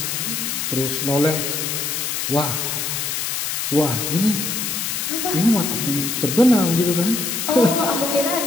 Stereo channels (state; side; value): noise; left; hiss, 2 dB below the sound